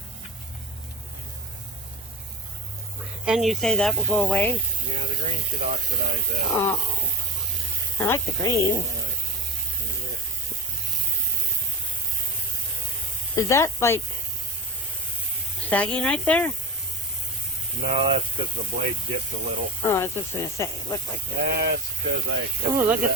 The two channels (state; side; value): normal; both; correlation 0.24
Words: And you say that will go away? Yeah, the green should oxidize out. Oh, I like the green. Right. Is that like sagging right there? No, that's because the blade dipped a little. Oh, I was just going to say, it looked like that. That's because I cut Oh, look through